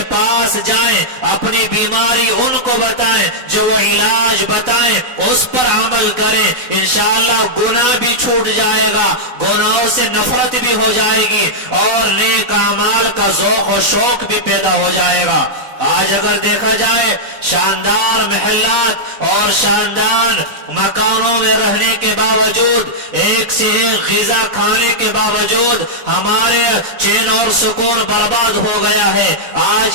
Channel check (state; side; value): late; left; 4.0 ms